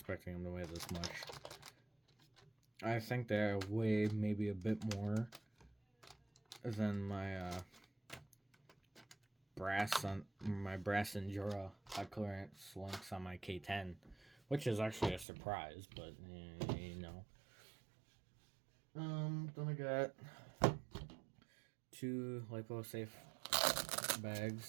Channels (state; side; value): drops out; left; at 15.2 s